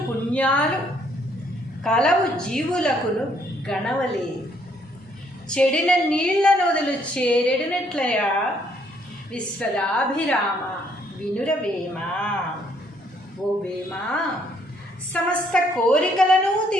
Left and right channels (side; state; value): both; normal; correlation 0.67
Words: పుణ్యాలు కలవు జీవులకును గణవలేదు, చెడిన నీళ్ల నొదలు చేరెడినట్లయా విశ్వదాభిరామ వినురవేమా. ఓ వేమా, సమస్త కోరికలను